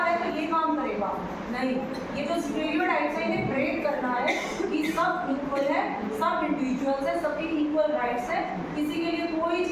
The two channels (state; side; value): identical; both; correlation 1.00